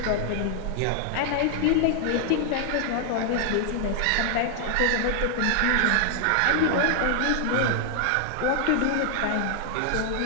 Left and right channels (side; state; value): both; different; correlation 0.00